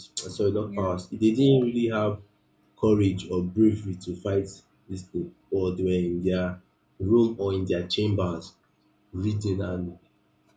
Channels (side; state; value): both; identical; correlation 1.00